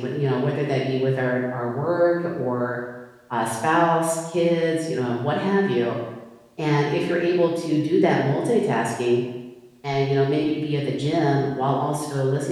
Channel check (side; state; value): both; identical; correlation 1.00